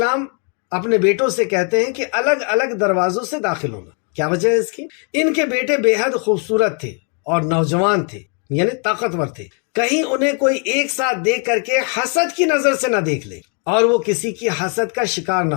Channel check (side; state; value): right; quieter; 39.3 dB